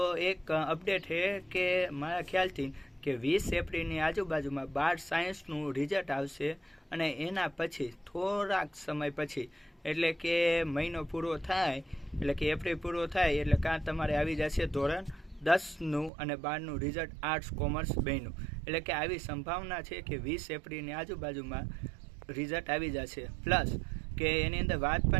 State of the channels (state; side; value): drops out; left; at 16.1 s